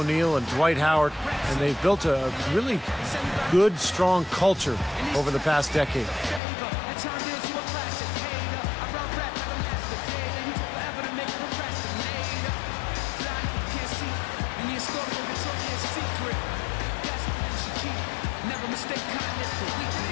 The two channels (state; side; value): drops out; right; at 6.4 s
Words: O'Neal and Dwight Howard, and they've built a really good, strong culture over the past decade.